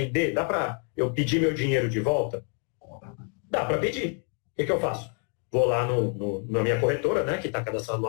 Dá para eu pedir meu dinheiro de volta? Dá para pedir. O que eu faço? Vou lá na minha corretora, né, que está cadastrado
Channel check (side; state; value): right; quieter; 38.6 dB